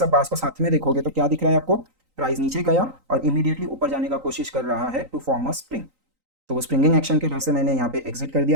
बार्स को साथ में देखोगे तो क्या दिख रहा है आपको, प्राइस नीचे गया और इमीडिएटली ऊपर जाने का कोशिश कर रहा है टू फॉर्म अ स्प्रिंग। तो वो स्प्रिंगिंग एक्शन के डर से मैंने यहाँ पे एग्जिट कर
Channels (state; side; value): late; left; 3.9 ms